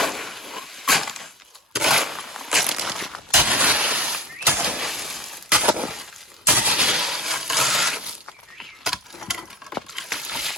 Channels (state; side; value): normal; both; correlation 0.35